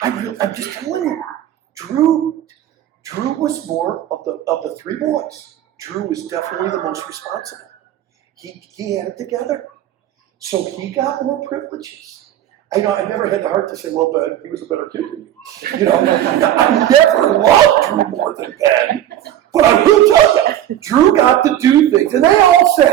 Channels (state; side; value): quieter; left; 11.9 dB